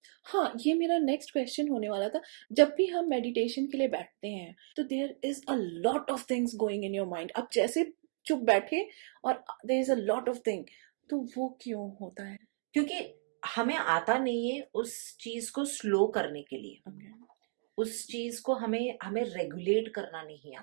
हाँ, ये मेरा नेक्स्ट क्वेश्चन होने वाला था। जब भी हम मेडिटेशन के लिए बैठते हैं तो there is a lot of things going in your mind. आप जैसे चुप बैठे और there is a lot of thing, तो वो क्यों होता है? क्योंकि हमें आता नहीं है उस चीज को स्लो करने के लिए, Okay. उस चीज को हमें हमें रेगुलेट करना नहीं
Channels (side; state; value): left; silent; digital silence